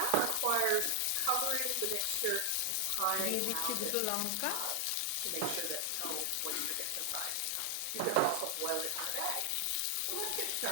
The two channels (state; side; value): different; both; correlation 0.00